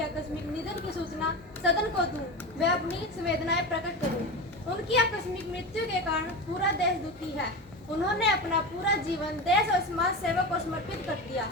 आकस्मिक निधन की सूचना सदन को दूं, वे अपनी संवेदनाएं प्रकट करूं। उनकी आकस्मिक मृत्यु के कारण पूरा देश दुखी है। उन्होंने अपना पूरा जीवन देश और समाज सेवा को समर्पित कर दिया।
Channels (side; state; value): both; normal; correlation 0.24